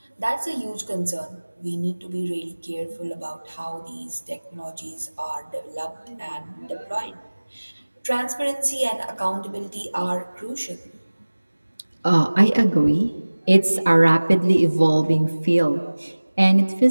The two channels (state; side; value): inverted; both; correlation -1.00